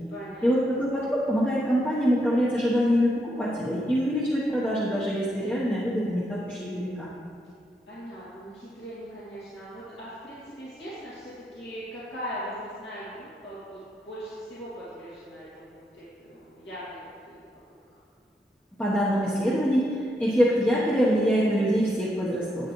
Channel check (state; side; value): normal; both; correlation 0.79